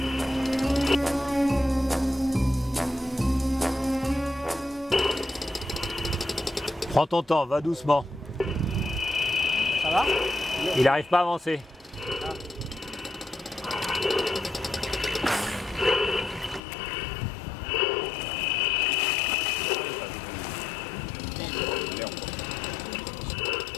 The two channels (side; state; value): right; drops out; at 16.6 s